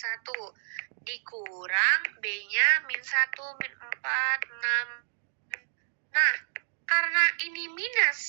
Dikurang B-nya min 1, min 4, 6. Nah, karena ini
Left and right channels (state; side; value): silent; left; digital silence